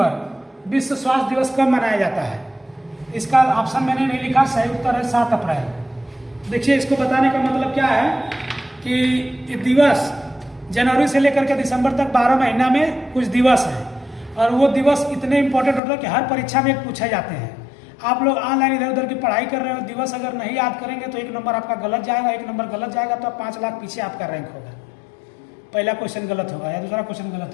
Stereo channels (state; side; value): drops out; right; at 15.8 s